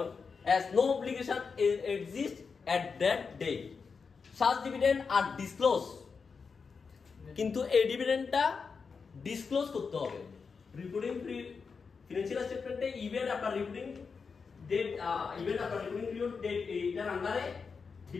as no obligation exists at that date. Such dividend are disclosed, কিন্তু এই ডিভিডেন্ডটা ডিসক্লোজ করতে হবে রিপোর্টিং ফিনান্সিয়াল স্টেটমেন্টে ইভেন্ট আপনার রিপোর্টিং ডেট, ইভেন্ট আপনার রিপোর্টিং পিরিয়ড ডেট এইটার আন্ডারে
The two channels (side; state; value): right; quieter; 5.3 dB